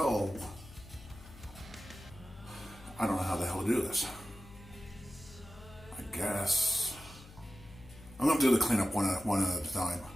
I don't know how the hell to do this. I guess I'm going to do the cleanup one at a time.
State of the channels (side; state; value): left; noise; hum, 18 dB below the sound